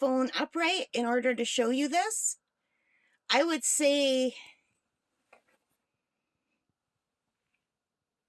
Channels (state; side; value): identical; both; correlation 1.00